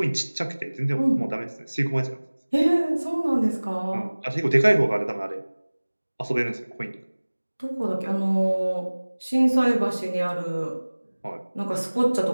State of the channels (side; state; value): both; inverted; correlation -1.00